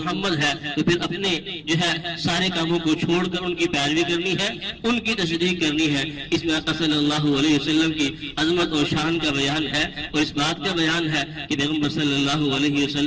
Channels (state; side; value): identical; both; correlation 1.00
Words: ہے، تو پھر اپنے جو ہے سارے کاموں کو چھوڑ کر ان کی پیروی کرنی ہے، ان کی تصدیق کرنی ہے۔ اس میں آقا صلی اللہ علیہ وسلم کی عظمت اور شان کا بیان ہے، اور اس بات کا بیان ہے کہ پیغمبر صلی اللہ علیہ